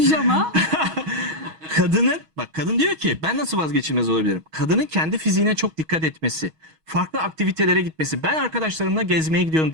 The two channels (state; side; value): late; left; 6.3 ms